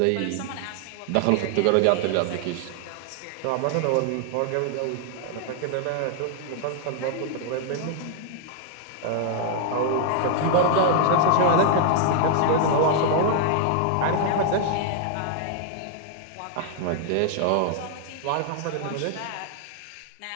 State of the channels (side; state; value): both; different; correlation 0.00